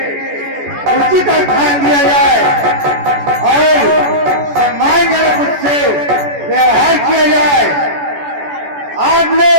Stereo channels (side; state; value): left; late; 14 ms